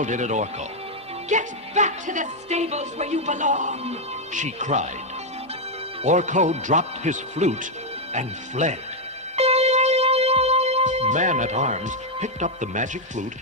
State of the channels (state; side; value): normal; both; correlation 0.00